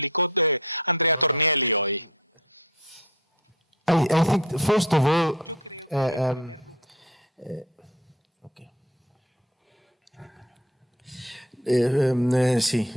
Andrea Tornielli hoy. I think, first of all, Yo creo que en primer lugar, sí,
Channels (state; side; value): normal; both; correlation 0.41